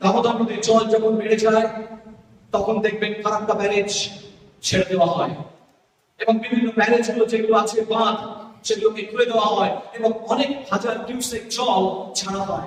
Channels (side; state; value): both; identical; correlation 1.00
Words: দামোদর নদীর জল যখন বেড়ে যায় তখন দেখবেন ফারাক্কা ব্যারেজ ছেড়ে দেওয়া হয় এবং বিভিন্ন ব্যারেজ গুলো যেগুলো আছে বাঁধ সেগুলোকে খুলে দেওয়া হয় এবং অনেক হাজার কিউসেক জল ছাড়া